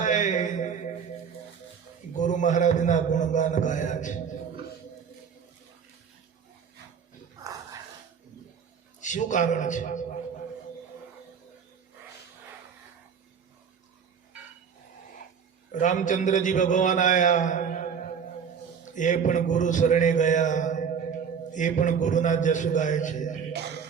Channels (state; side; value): quieter; left; 6.9 dB